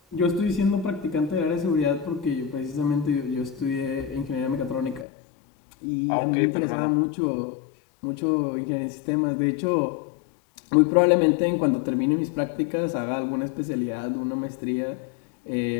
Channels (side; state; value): right; drops out; at 5.1 s